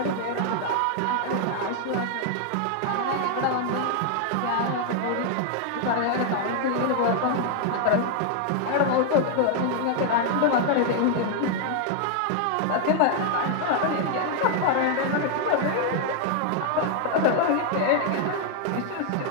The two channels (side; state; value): both; different; correlation 0.00